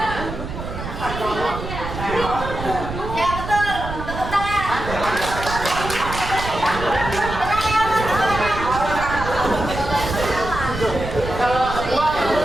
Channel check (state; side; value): noise; right; rumble, 8 dB below the sound